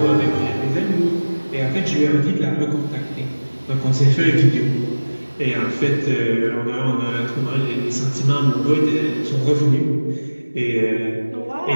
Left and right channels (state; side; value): inverted; both; correlation -1.00